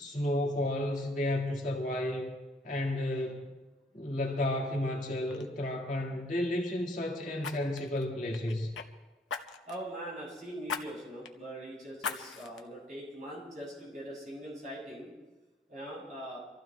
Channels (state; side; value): normal; both; correlation 0.64